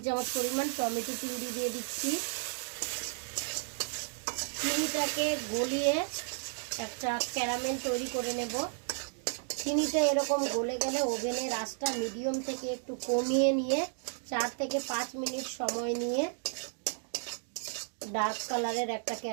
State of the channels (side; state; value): left; silent; 56 dB below the other